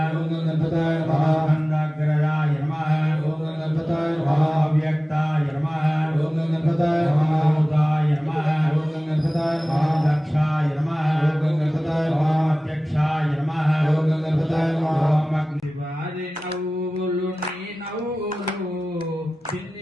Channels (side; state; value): both; normal; correlation 0.97